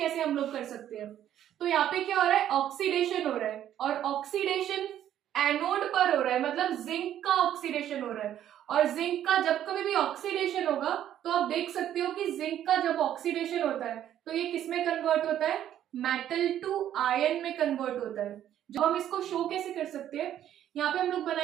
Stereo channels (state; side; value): quieter; left; 11.1 dB